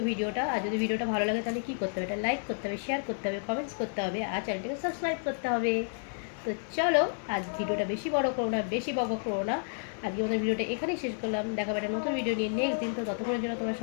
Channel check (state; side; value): silent; right; 57 dB below the other